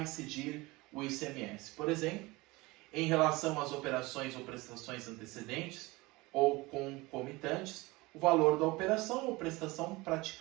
incidir o ICMS? Por exemplo, em relação às operações ou prestações antecedentes ou concomitantes, o valor da operação ou prestação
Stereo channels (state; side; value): quieter; left; 22.3 dB